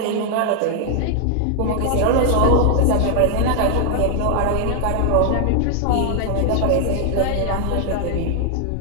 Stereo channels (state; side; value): different; both; correlation 0.00